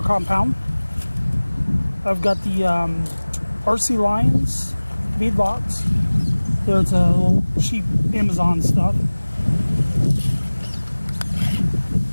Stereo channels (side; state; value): both; inverted; correlation -1.00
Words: Compound. I've got the RC Lions beadlocks. There's a little cheap Amazon stuff.